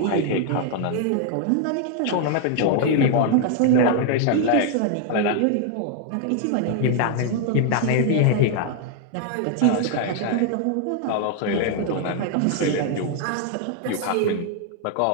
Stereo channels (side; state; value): both; different; correlation 0.00